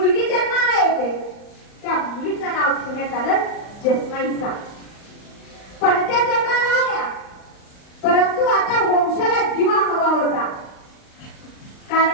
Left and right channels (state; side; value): late; right; 39 ms